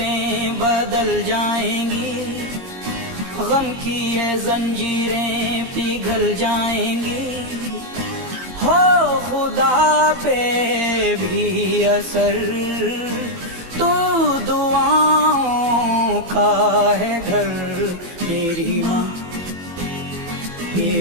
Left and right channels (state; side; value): late; left; 22 ms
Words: बदल जाएंगी, गम की ये जंजीरें पिघल जाएंगी, हो खुदा पे भी असर तो दुआओं का है घर। मेरी माँ